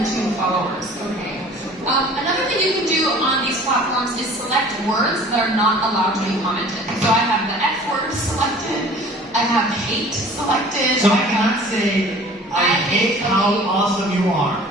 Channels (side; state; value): both; normal; correlation 0.47